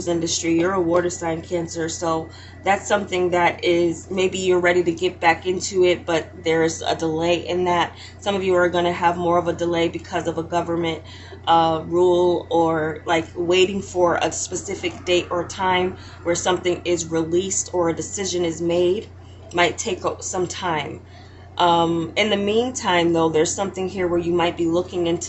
industry. You're a water sign, Cancer, so that's something that is, maybe you're ready to get back into it, but there's a delay in that. Some of you are going to have more of a delay because of a government rule, or like waiting for a specific date or time where something is released or a decision is made. Might take some time. In the meantime, though, there's something here where you might be looking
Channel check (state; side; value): identical; both; correlation 1.00